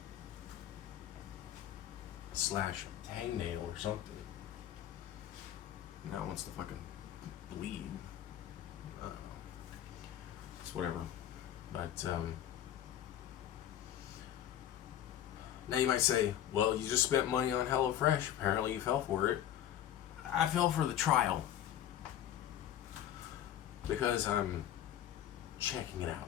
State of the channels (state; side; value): quieter; right; 11.3 dB